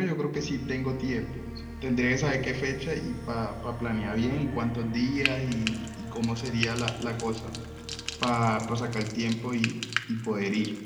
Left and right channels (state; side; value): identical; both; correlation 1.00